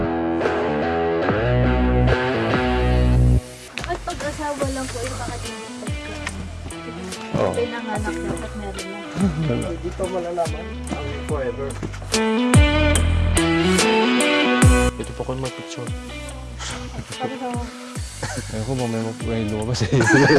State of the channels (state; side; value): identical; both; correlation 1.00